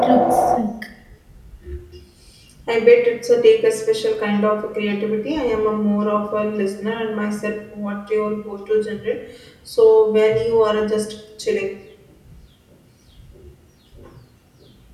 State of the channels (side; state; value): both; identical; correlation 1.00